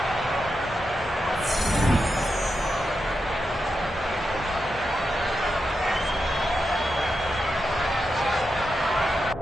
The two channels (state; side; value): normal; both; correlation 0.87